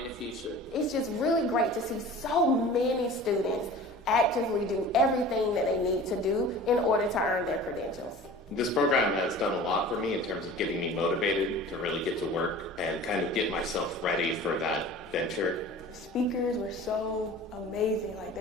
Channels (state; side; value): normal; both; correlation 0.40